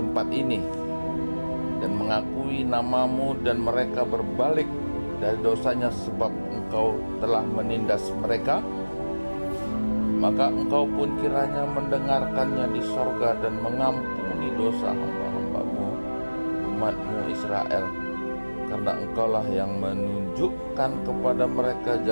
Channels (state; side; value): inverted; both; correlation -1.00